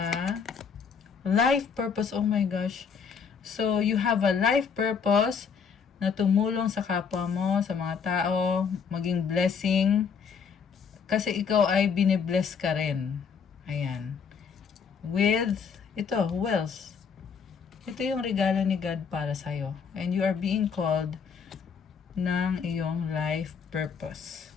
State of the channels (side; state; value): right; quieter; 6.3 dB